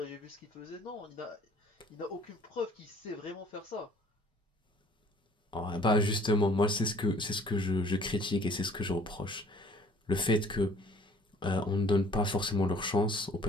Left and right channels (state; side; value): normal; both; correlation 0.55